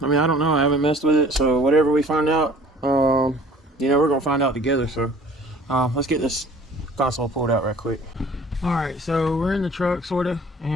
I mean, I don't know, I haven't messed with it, so whatever we find out, you know, we're going to find out together. So let's get this console pulled out right quick. Alright, so we're in the truck, sort of,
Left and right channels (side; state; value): both; normal; correlation 0.50